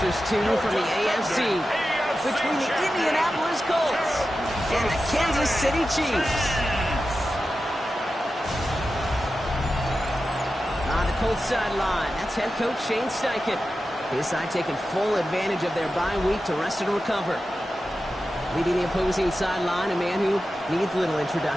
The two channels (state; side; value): normal; both; correlation 0.92